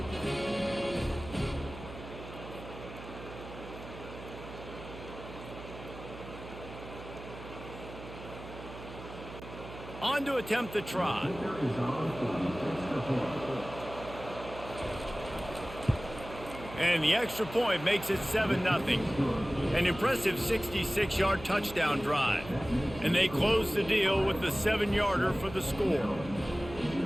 On to attempt the try. And the extra point makes it 7-0. An impressive 66-yard touchdown drive. And they close the deal with the 7-yarder for the score.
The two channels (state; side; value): noise; right; hum, 13 dB below the sound